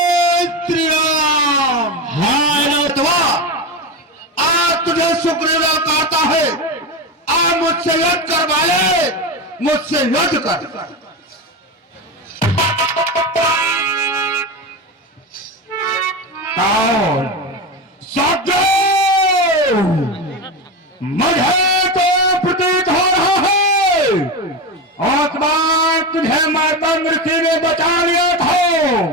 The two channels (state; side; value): normal; both; correlation 0.19